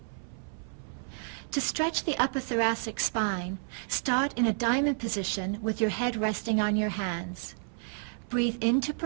To stretch the upper thoracic spine, start in a diamond position with your head resting on your hands. Breathe in to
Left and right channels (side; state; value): left; silent; 57 dB below the other